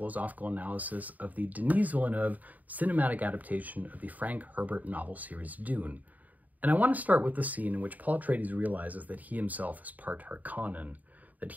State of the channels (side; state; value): left; late; 0.077 ms